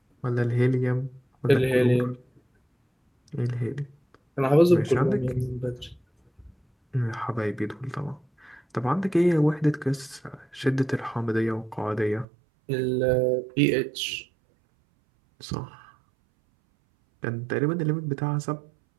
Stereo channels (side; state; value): left; drops out; at 12.2 s